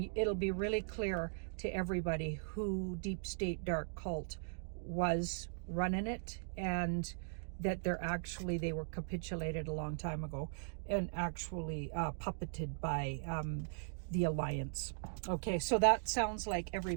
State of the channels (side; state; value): left; silent; digital silence